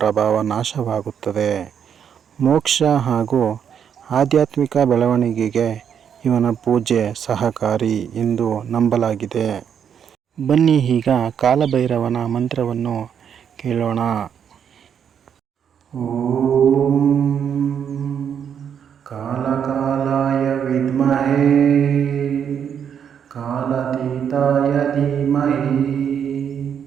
ನಾಶವಾಗುತ್ತದೆ. ಮೋಕ್ಷ ಹಾಗೂ ಆಧ್ಯಾತ್ಮಿಕ ಬೆಳವಣಿಗೆಗೆ ಇವನ ಪೂಜೆ ಸಹಕಾರಿ ಎಂದು ನಂಬಲಾಗಿದೆ. ಬನ್ನಿ ಈಗ ಕಾಲಭೈರವನ ಮಂತ್ರವನ್ನು ಕೇಳೋಣ. ಓಂ ಕಾಲಕಾಲಾಯ ವಿದ್ಮಹೇ ಕಾಲಾತೀತಾಯ ಧೀಮಹಿ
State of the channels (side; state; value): left; quieter; 8.1 dB